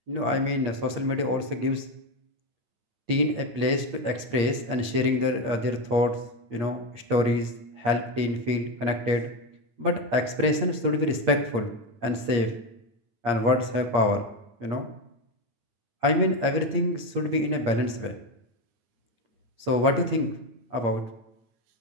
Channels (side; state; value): left; late; 8.6 ms